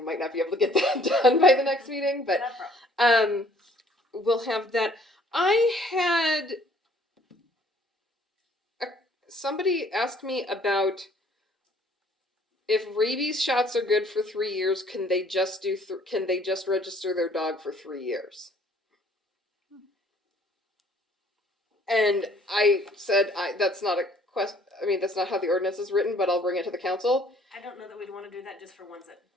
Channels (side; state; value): both; normal; correlation 0.59